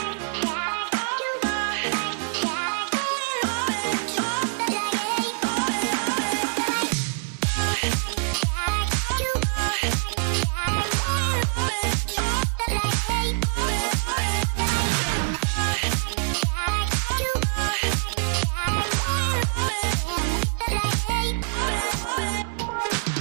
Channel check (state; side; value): silent; left; 60 dB below the other